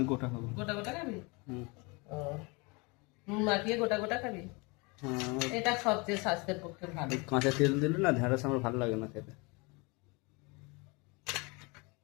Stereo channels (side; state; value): right; quieter; 28.0 dB